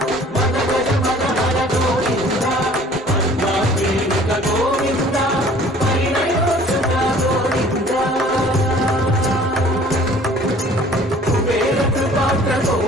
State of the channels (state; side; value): normal; both; correlation 0.52